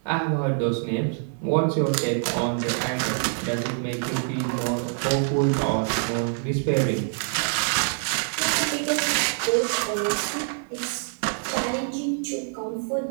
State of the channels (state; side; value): silent; left; digital silence